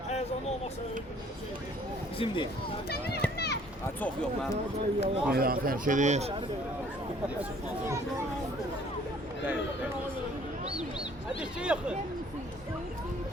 Bizim değil. Ha, çok yok lan. Meydan tərk edir.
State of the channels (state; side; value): normal; both; correlation 0.57